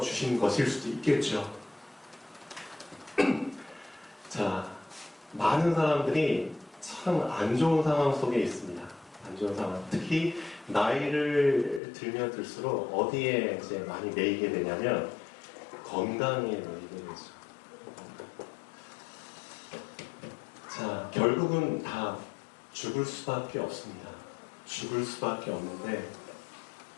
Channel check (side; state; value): right; drops out; at 11.8 s